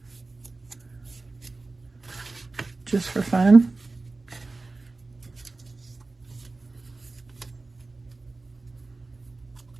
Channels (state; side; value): quieter; left; 3.5 dB